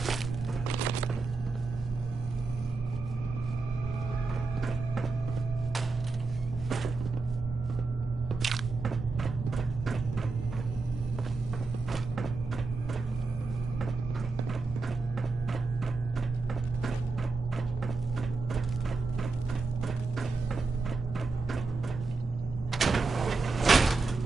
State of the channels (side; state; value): left; quieter; 3.9 dB